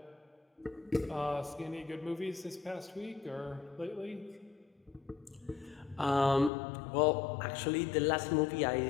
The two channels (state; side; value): drops out; right; at 6.5 s